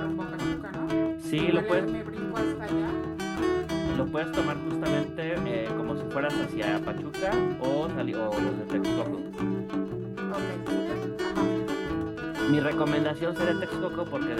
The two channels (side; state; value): both; identical; correlation 1.00